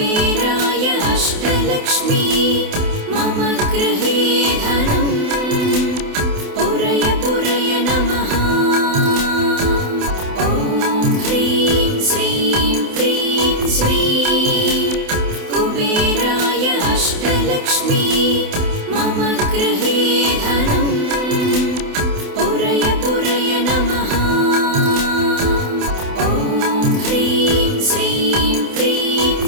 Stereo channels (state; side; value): late; left; 28 ms